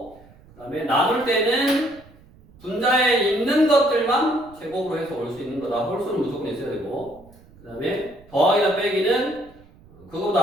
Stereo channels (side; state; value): right; noise; rumble, 25 dB below the sound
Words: 그 다음에 나눌 때는 분자에 있는 것들만 제곱으로 해서 올 수 있는 거다. 홀수는 무조건 있어야 되고 그 다음에 더하기나 빼기는